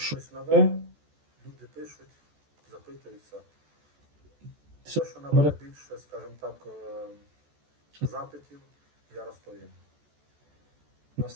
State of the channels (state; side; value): late; left; 14 ms